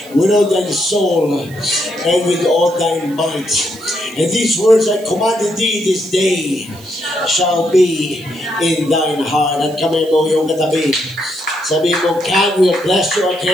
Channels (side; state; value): right; noise; hiss, 23 dB below the sound